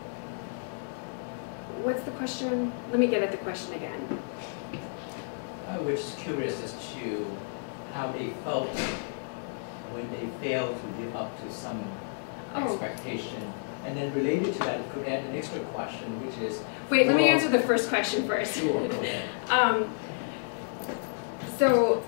what's the question? Let me get at the question again. I was just curious as to how they felt when they failed to live up to some expectation. And then related to that, it could add an extra question, which is... Wait, let me answer the first question first. Sure, go ahead. So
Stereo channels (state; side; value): silent; right; digital silence